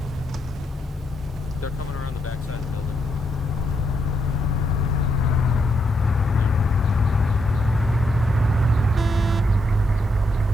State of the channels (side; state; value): both; normal; correlation 0.78